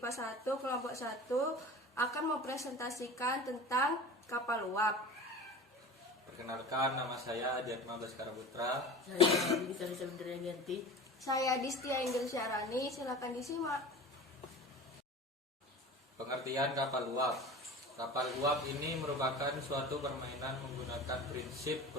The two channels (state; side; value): normal; both; correlation 0.35